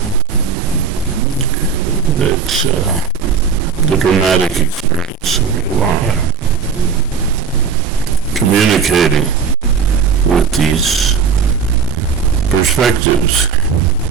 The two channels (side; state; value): left; quieter; 6.1 dB